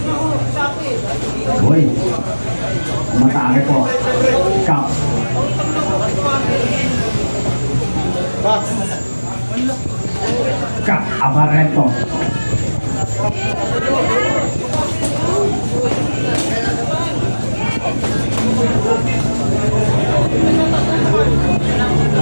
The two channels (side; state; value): both; inverted; correlation -1.00